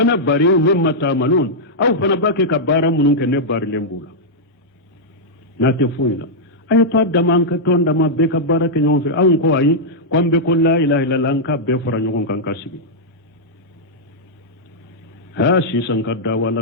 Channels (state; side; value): normal; both; correlation -0.07